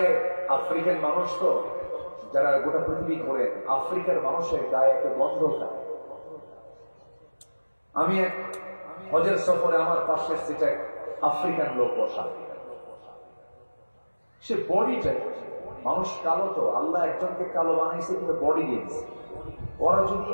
আফ্রিকান মানুষ তো, যারা গোটা পৃথিবী ঘোরেন, আফ্রিকার মানুষের গায়ে একটা গন্ধ থাকে। আমি এক হজের সফরে আমার পাশের সিটে আফ্রিকান লোক বসা, সে বডিটা, মানুষ কালো তো, আল্লাহ একজনকে কালো বানাইছে কিন্তু বডি দিয়েছে। ওরা যদি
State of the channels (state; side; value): inverted; both; correlation -1.00